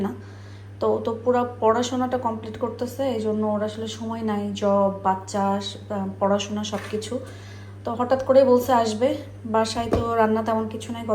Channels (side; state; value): both; identical; correlation 1.00